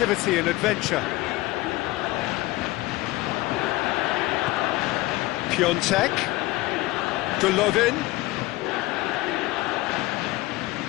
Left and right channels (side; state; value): right; quieter; 19.3 dB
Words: and adventure. Piontek, Golovin.